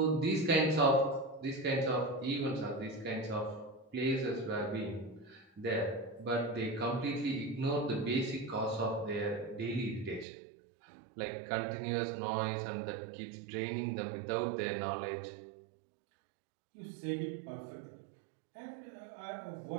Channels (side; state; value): left; drops out; at 10.2 s